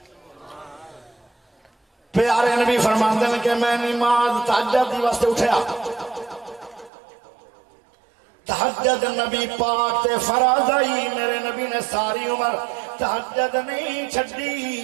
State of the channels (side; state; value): left; drops out; at 6.9 s